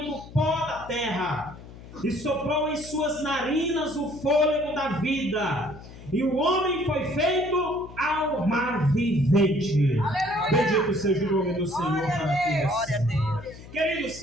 do pó da terra, e soprou em suas narinas o fôlego da vida, e o homem foi feito alma vivente. Aleluia. Bendito seja o nome do Senhor para todos. Glória a Deus. Queridos,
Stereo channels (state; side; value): noise; left; hum, 17 dB below the sound